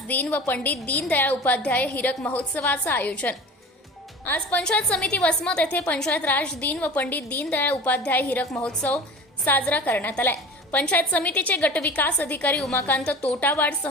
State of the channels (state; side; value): normal; both; correlation 0.37